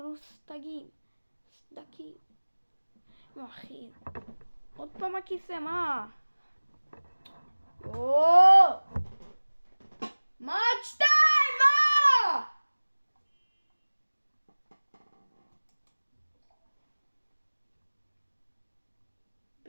סדקים. נו אחי. עוד פעם הכיסא, מה? מה עד 2? מה?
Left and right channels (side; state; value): both; inverted; correlation -1.00